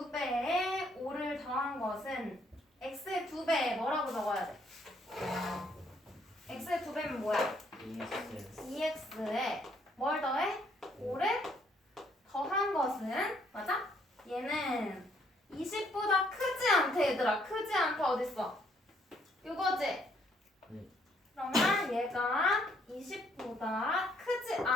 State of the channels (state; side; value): normal; both; correlation 0.68